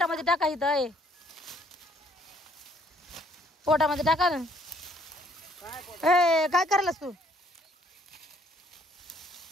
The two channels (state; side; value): normal; both; correlation 0.65